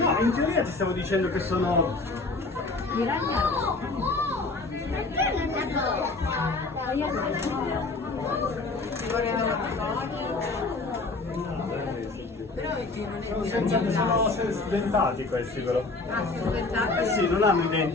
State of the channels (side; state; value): right; quieter; 3.5 dB